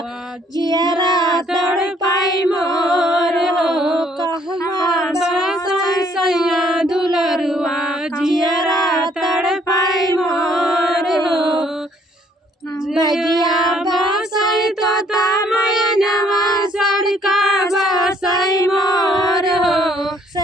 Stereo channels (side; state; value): both; normal; correlation 0.64